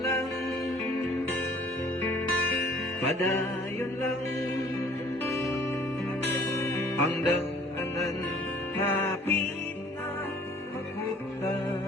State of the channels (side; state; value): both; normal; correlation 0.54